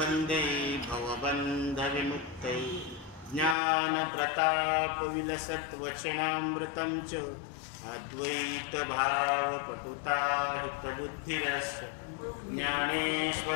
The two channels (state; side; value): drops out; right; at 3.6 s